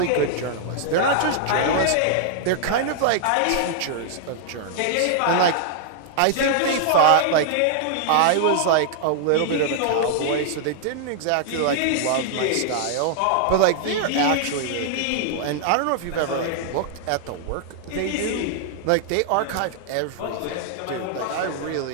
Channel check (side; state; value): both; different; correlation -0.01